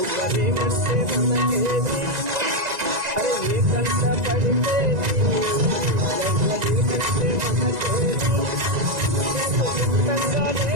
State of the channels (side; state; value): left; late; 1.9 ms